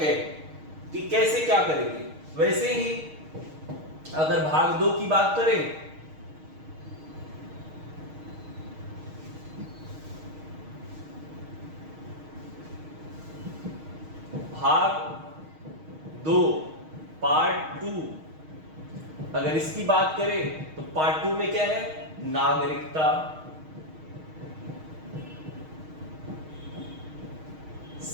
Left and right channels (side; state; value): left; late; 6.4 ms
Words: कि कैसे क्या करेंगे। वैसे ही अगर भाग 2 की बात करें, भाग 2 पार्ट 2, अगर इसकी बात करें तो पार्ट 2 में क्या है, नागरिकता,